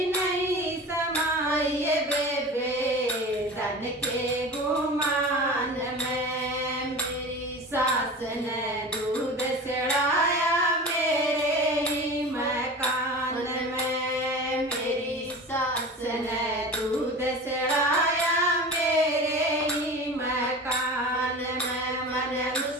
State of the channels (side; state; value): both; normal; correlation 0.34